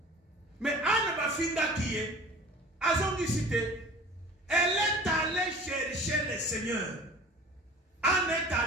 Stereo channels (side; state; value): both; normal; correlation 0.42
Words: Mais Anne Bafinda qui est à son cité, elle est allée chercher le Seigneur. Anne est